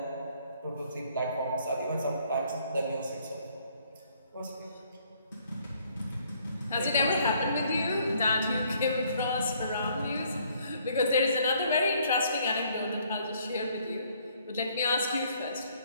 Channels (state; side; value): inverted; both; correlation -0.65